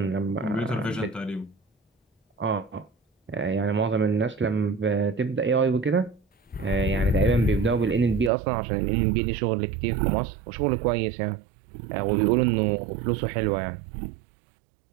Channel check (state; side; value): drops out; left; at 8.3 s